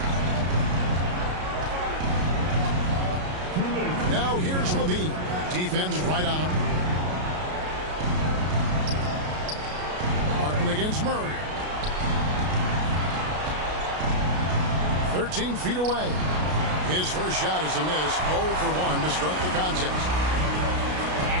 Now here's Levine. Defense right on him. Martin against Murray. 13 feet away. His first shot is a miss. 0 for 1 to start the contest.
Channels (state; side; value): late; left; 33 ms